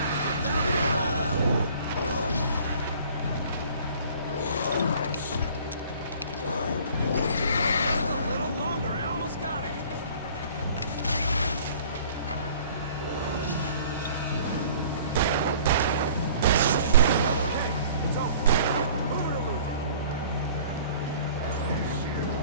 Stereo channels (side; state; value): both; inverted; correlation -0.50